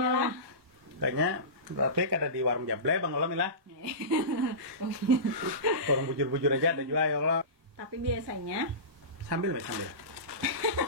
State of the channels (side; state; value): left; late; 1.1 ms